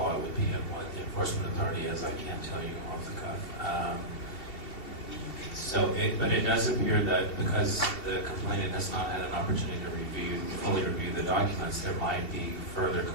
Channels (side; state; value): right; late; 2.7 ms